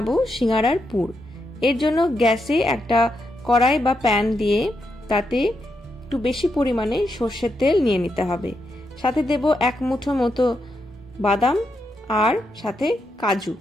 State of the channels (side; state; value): both; normal; correlation 0.83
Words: সিঙ্গারার পুর। এর জন্য গ্যাসে একটা কড়াই বা প্যান দিয়ে তাতে একটু বেশি পরিমাণে সর্ষের তেল নিয়ে নিতে হবে। সাথে দেব 1 মুঠো মতো বাদাম, আর সাথে